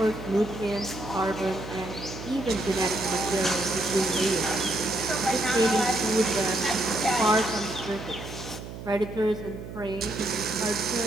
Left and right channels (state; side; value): noise; right; hum, 11 dB below the sound